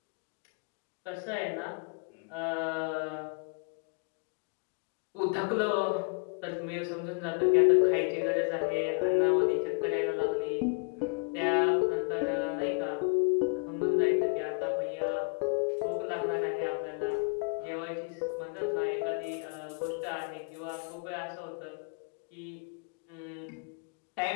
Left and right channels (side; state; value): right; quieter; 36.2 dB